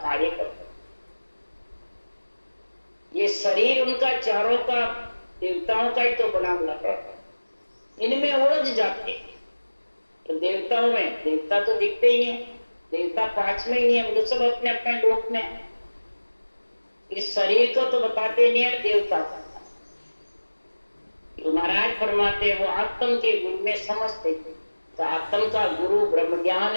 कार्य करता हूं। ये शरीर उनका चारों का देवताओं का ही तो बना हुआ है, इनमें उलझ जाते हैं। तो देवताओं में देवता तो दिखते ही नहीं, देवता 5 में ही नहीं है, वो तो सब अपने अपने लोक में। इस शरीर को तो बताते नहीं है देवता। तो महाराज फरमाते वो आत्म के गुरु में समझते, तो आत्म का गुरु ब्रह्म ज्ञान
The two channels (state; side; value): inverted; both; correlation -1.00